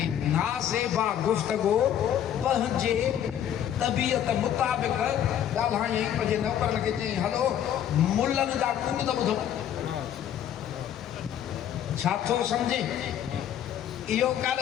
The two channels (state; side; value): quieter; right; 10.2 dB